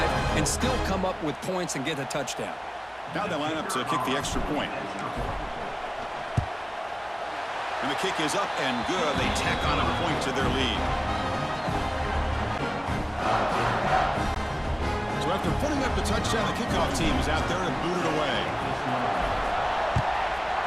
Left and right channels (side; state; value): both; identical; correlation 1.00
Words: and still come up with points and get a touchdown. Now they line up to kick the extra point. And the kick is up and good. They tack on a point to their lead. So after putting up the touchdown, the kickoff team is out there to boot it away.